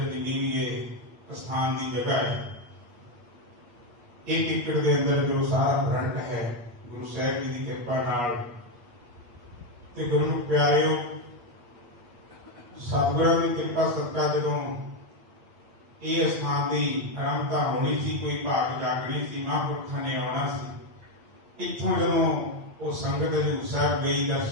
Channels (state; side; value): late; left; 8.3 ms